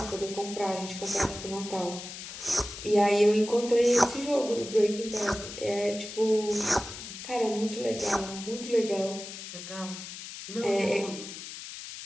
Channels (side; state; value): left; noise; hiss, 11 dB below the sound